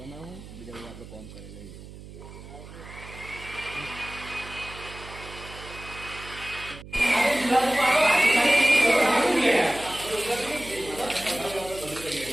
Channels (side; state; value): right; noise; hum, 15 dB below the sound